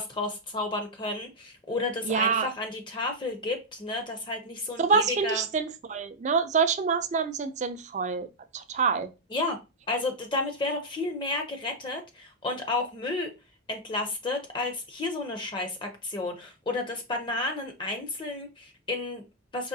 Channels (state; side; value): normal; both; correlation -0.06